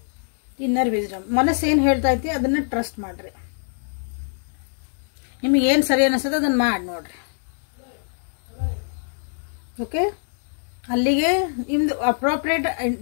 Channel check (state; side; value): silent; right; digital silence